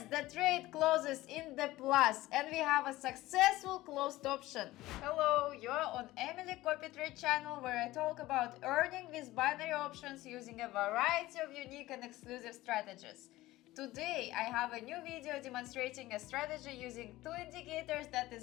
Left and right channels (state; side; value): quieter; right; 17.4 dB